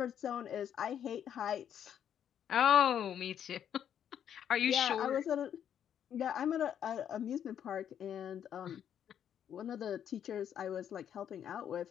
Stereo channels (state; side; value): quieter; right; 9.3 dB